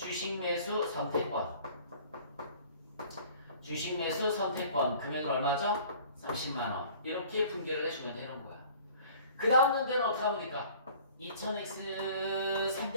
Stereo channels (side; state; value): both; inverted; correlation -0.49